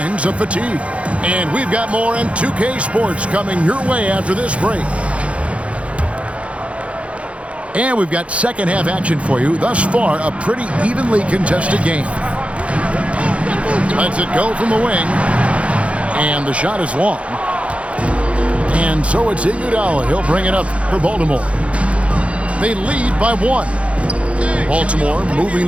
of fatigue. And we've got more in 2K Sports coming your way after this break. And we've got second half action for you. Thus far, a pretty evenly contested game. Lets it go from the wing. And the shot is long. And so it's Iguodala. He'll bring it up for Baltimore. They lead by 1. Baltimore moving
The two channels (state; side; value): late; left; 0.062 ms